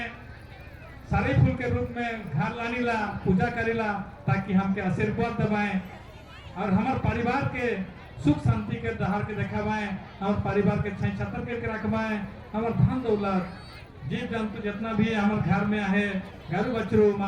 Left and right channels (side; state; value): both; identical; correlation 1.00